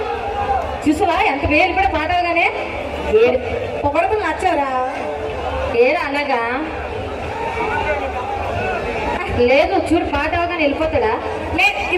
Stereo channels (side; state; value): both; identical; correlation 1.00